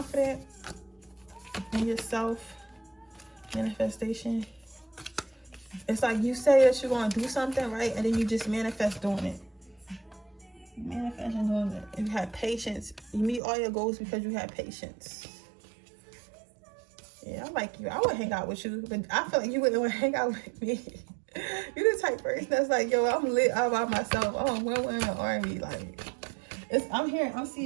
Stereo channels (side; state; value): left; drops out; at 13.4 s